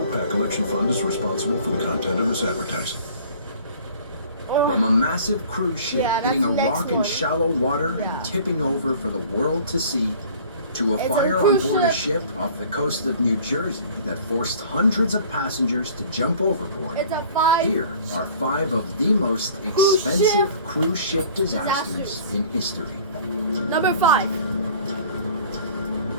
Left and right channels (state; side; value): inverted; both; correlation -0.49